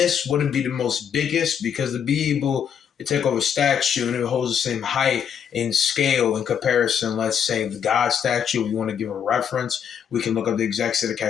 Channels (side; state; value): right; quieter; 8.1 dB